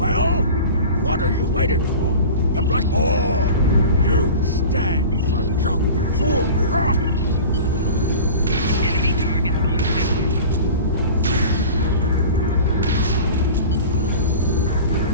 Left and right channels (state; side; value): inverted; both; correlation -0.37